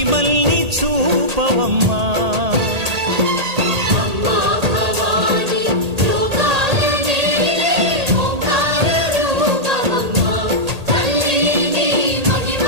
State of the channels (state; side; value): late; left; 1.8 ms